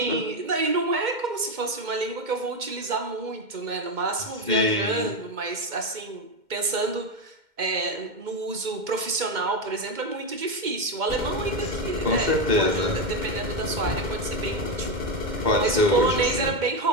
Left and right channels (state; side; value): late; left; 2.1 ms